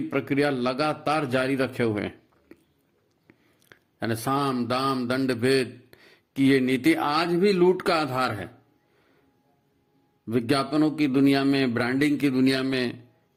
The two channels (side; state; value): both; identical; correlation 1.00